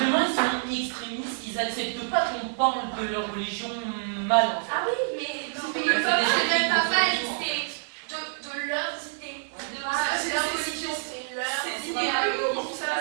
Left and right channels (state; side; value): silent; left; digital silence